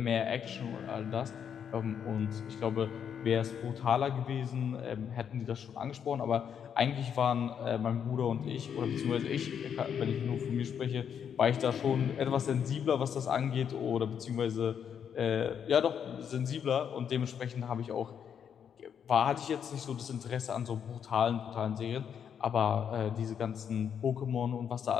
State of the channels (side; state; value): right; quieter; 8.0 dB